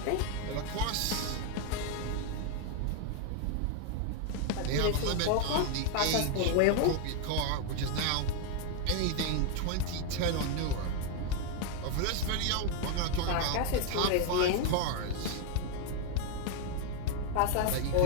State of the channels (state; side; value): different; both; correlation 0.01